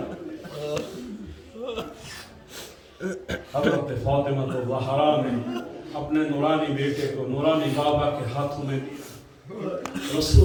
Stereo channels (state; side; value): identical; both; correlation 1.00